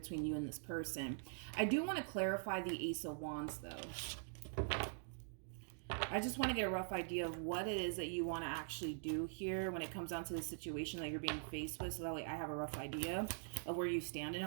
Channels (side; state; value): left; silent; digital silence